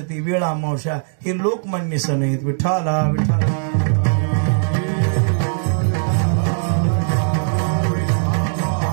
ती वेळ अमावस्या, हे लोकमान्य सण आहेत। विठ्ठला विठ्ठला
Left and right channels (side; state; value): left; silent; digital silence